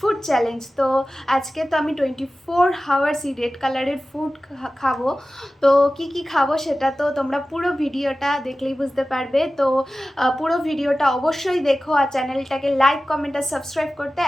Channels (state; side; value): normal; both; correlation 0.95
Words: ফুড চ্যালেঞ্জ। তো আজকে তো আমি 24 আওয়ার্সই রেড কালারের ফুড খাবো। তো কি কি খাবো সেটা তো তোমরা পুরো ভিডিওটা দেখলেই বুঝতে পারবে। তো পুরো ভিডিওটা অবশ্যই দেখো আর চ্যানেলটাকে লাইক কমেন্ট আর সাবস্ক্রাইব করতে